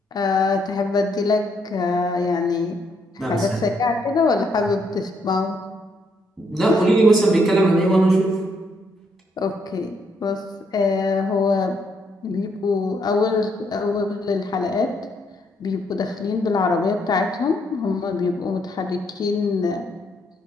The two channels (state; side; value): normal; both; correlation 0.73